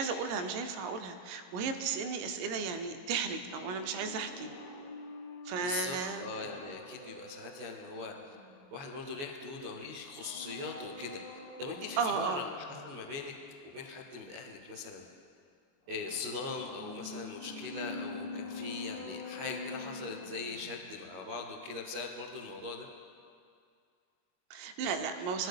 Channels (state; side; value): late; left; 22 ms